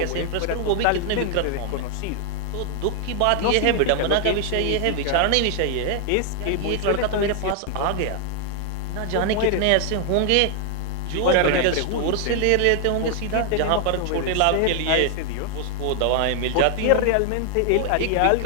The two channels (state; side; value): different; both; correlation 0.00